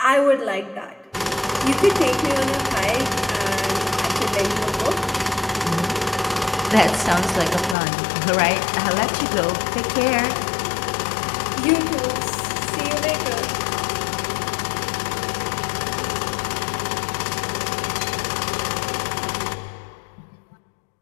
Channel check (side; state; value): right; drops out; at 7.8 s